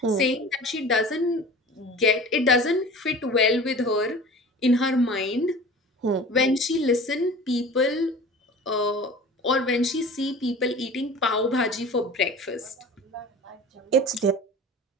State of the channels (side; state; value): both; normal; correlation 0.39